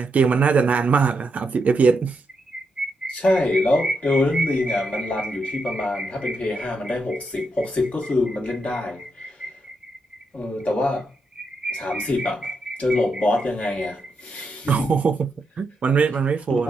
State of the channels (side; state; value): both; normal; correlation 0.82